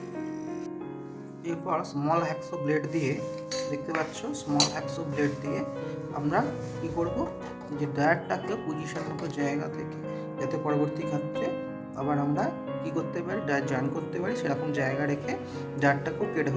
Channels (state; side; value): identical; both; correlation 1.00